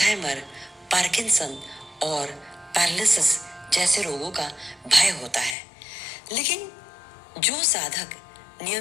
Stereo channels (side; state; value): right; drops out; at 5.6 s